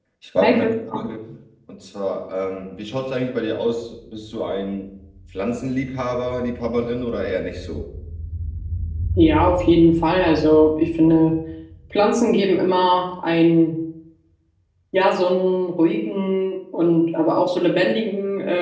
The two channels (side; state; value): both; identical; correlation 1.00